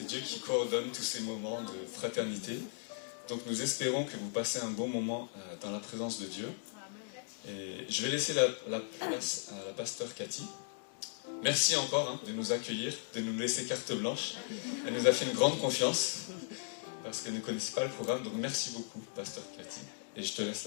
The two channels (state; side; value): silent; right; digital silence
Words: Dieu qui coordonne tous ces moments de fraternité. Donc nous espérons que vous passez un bon moment dans la présence de Dieu. Et je vais laisser la place à la pasteur Cathy. Merci encore de nous accueillir, de nous laisser carte blanche. Elle nous a fait une grande confiance parce qu'elle ne connaissait pas le programme. Donc merci beaucoup, pasteur Cathy. Et je te laisse